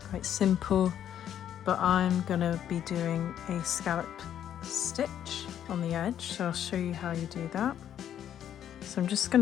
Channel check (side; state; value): right; quieter; 10.1 dB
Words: simple, but I'm gonna be doing a scallop stitch on the edge, so I'll show you how you do that. So I'm just going